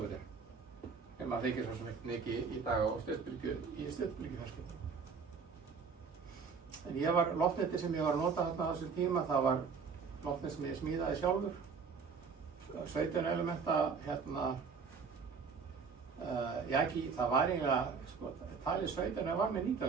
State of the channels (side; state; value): left; quieter; 5.5 dB